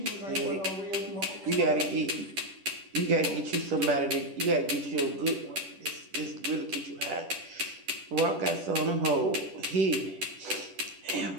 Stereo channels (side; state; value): left; late; 10 ms